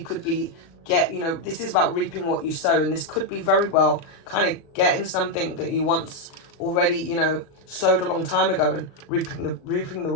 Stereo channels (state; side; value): late; right; 37 ms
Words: could be this is about reaping what you sow, and this could be very well kind of getting something that you once already, you know, sowed a long time ago, and reaping the